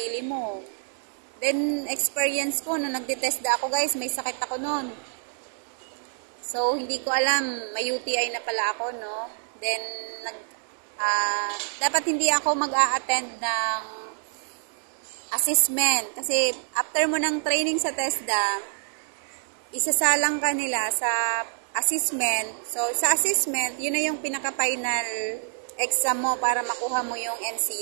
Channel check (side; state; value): left; silent; digital silence